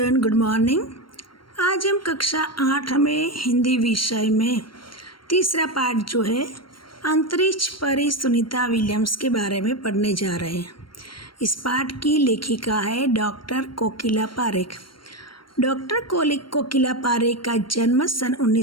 good morning. आज हम कक्षा 8 में हिंदी विषय में तीसरा पाठ जो है अंतरिक्ष परी सुनीता विलियम्स के बारे में पढ़ने जा रहे हैं। इस पाठ की लेखिका है डॉक्टर कोकिला पारेख। डॉक्टर कोकिला पारेख का जन्म सन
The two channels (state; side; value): late; right; 0.73 ms